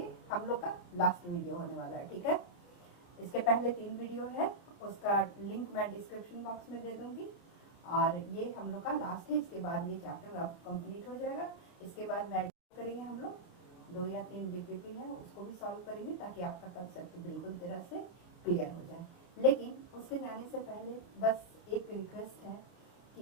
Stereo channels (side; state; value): right; late; 28 ms